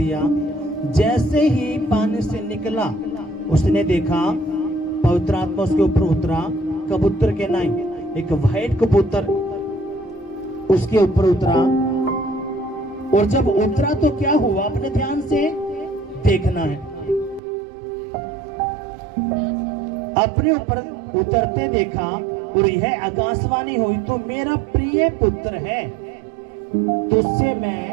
जैसे ही पानी से निकला उसने देखा पवित्र आत्मा उसके ऊपर उतरा, कबूतर के नहीं, एक व्हाइट कबूतर उसके ऊपर उतरा। और जब उतरा तो क्या हुआ? अपने ध्यान से देखना है। अपने ऊपर उतरते देखा और यह आकाशवाणी हुई, तो मेरा प्रिय पुत्र है, तुझसे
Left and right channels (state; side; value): drops out; left; at 17.4 s